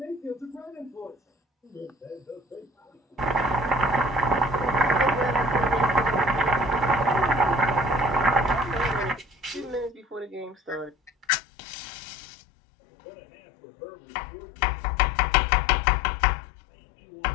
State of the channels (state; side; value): drops out; right; at 11.2 s